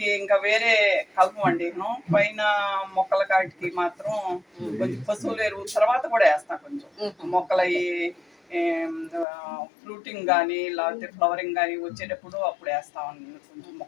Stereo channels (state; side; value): drops out; right; at 9.2 s